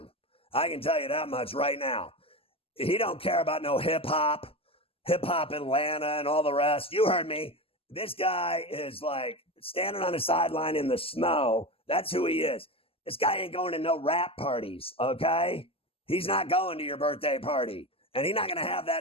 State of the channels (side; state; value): right; late; 0.27 ms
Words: I can tell you that much right now. He don't care about no hip-hop Atlanta and all the rest. You heard me. This guy is like standing on the sideline in the snow. That's who he is. This guy ain't going to no rap parties, okay? He's not going to your birthday party. And he's not going to have